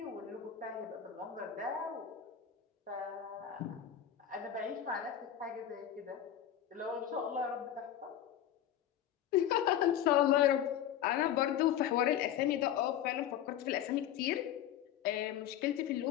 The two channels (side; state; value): right; quieter; 10.5 dB